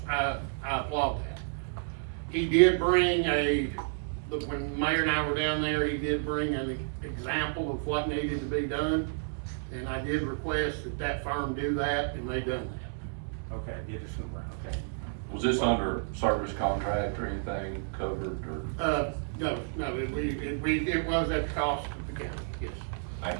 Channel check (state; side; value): silent; left; 57 dB below the other